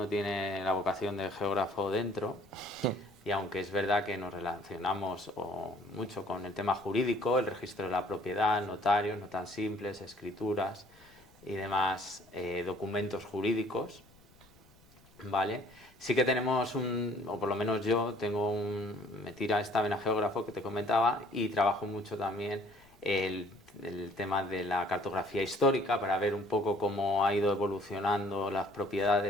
tiene la vocación de geógrafo dentro y aunque es verdad que nos relacionamos mucho con el tema jurídico, el registro de la propiedad, notarios, no tan simples, escrituras y demás documentos jurídicos, ¿vale? Sí que tenemos o por lo menos yo me tira esta vena geógrafo que te comentaba y trabajo mucho también el tema de la cartografía histórica para ver un poco cómo ha ido evolucionando las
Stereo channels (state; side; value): noise; left; rumble, 28 dB below the sound